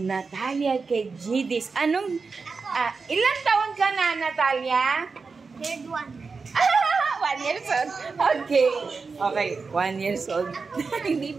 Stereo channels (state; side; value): quieter; left; 4.7 dB